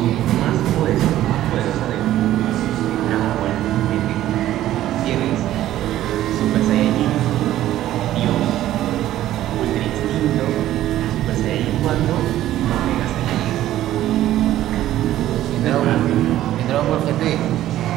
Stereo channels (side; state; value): left; quieter; 13.5 dB